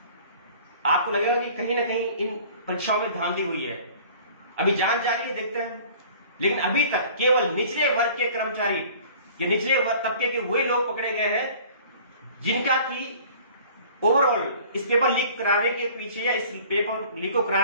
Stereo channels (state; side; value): inverted; both; correlation -0.48